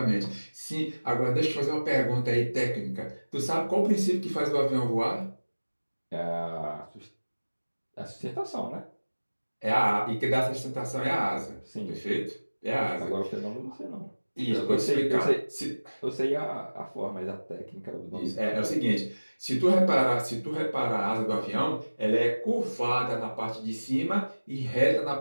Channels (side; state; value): both; inverted; correlation -1.00